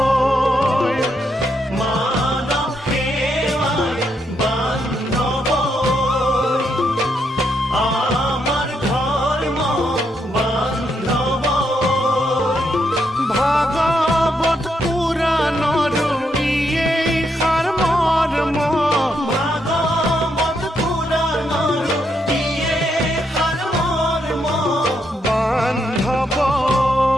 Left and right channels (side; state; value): both; normal; correlation 0.78